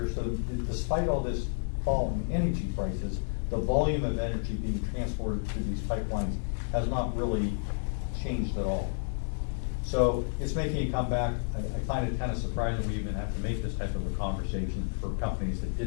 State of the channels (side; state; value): right; silent; digital silence